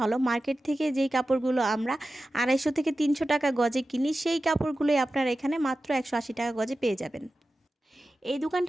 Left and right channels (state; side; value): normal; both; correlation 0.94